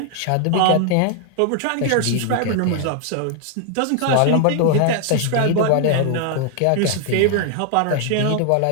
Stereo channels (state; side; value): different; both; correlation 0.00